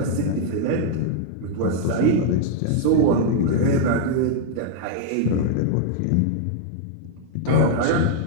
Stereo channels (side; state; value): both; different; correlation -0.01